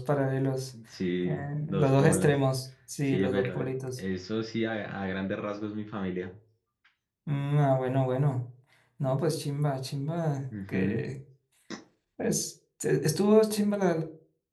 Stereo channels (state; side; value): identical; both; correlation 1.00